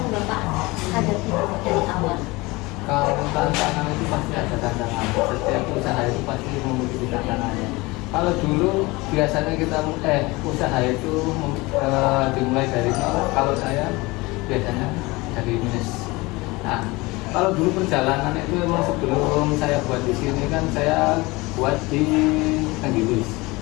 Bapak hadapi dari awal? Kalau tantangan itu pasti ada tantangan. Setiap usaha itu pasti memiliki tantangannya. Kalau dulu biasanya kita usaha itu dimulai dari nol. Kalau saya biasanya dari minus. Nah, kalau dulu perjalanan itu memang sebelum saya buat di sini kan saya buat di Tanggilis.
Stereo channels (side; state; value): right; quieter; 22.9 dB